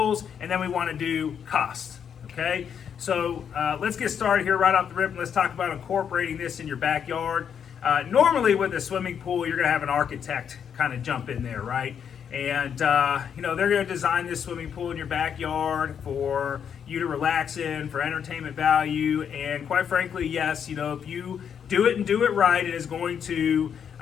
and then we want to do cost. Okay, so let's get started here right off the rip, and let's talk about incorporating this in your backyard. Normally, with a swimming pool, you're going to have an architect kind of jump in there, right? And they're going to design this swimming pool in your backyard for you to relax in, for entertainment value, and quite frankly, yes, if you do it and do it right, it is going to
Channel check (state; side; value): quieter; right; 7.9 dB